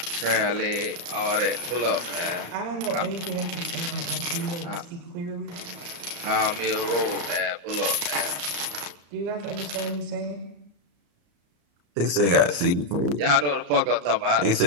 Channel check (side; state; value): left; late; 34 ms